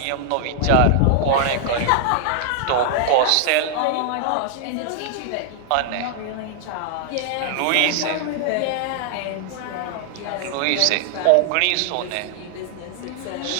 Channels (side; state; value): both; different; correlation 0.00